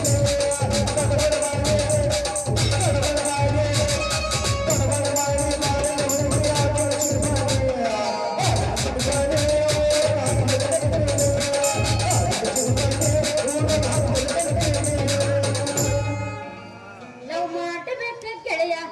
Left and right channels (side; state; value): both; identical; correlation 1.00